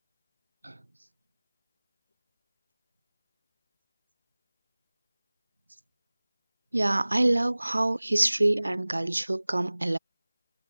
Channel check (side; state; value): both; inverted; correlation -1.00